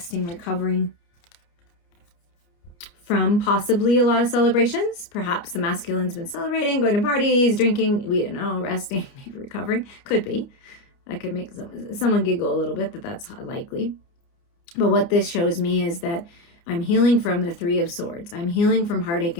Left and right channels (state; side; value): late; right; 29 ms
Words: recovering from possibly a lot of celebrations. Perhaps the masculine's been celebrating, going to parties, drinking, we don't know, resting, maybe recovering. Could be. That could make someone giggle a little bit, that's likely. But what this shows me is that I'm healing from the Three of Swords. I'm healing from heartache